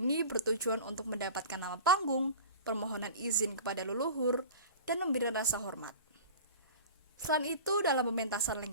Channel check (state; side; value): inverted; both; correlation -0.38